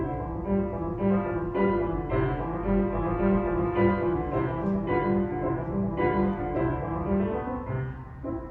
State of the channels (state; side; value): identical; both; correlation 1.00